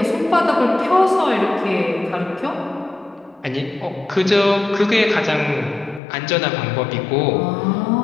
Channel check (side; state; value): right; drops out; at 6.0 s